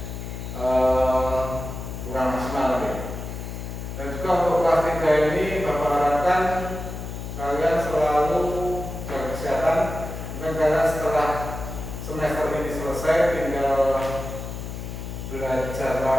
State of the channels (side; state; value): left; noise; hum, 7 dB below the sound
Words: kurang maksimal ya. Dan juga untuk kelas 3 ini Bapak harapkan kalian selalu jaga kesehatan. Mungkin kalian setelah semester ini selesai tinggal belajar